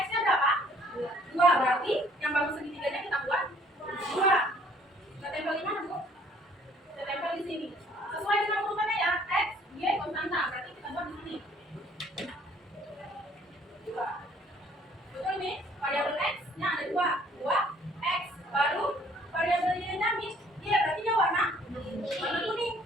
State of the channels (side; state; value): both; normal; correlation 0.59